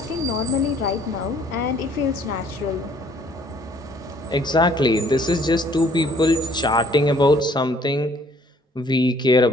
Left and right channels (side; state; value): both; normal; correlation 0.60